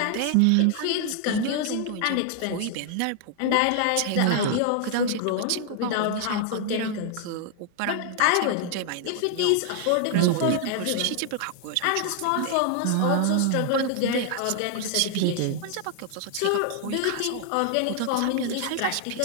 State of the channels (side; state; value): both; different; correlation 0.00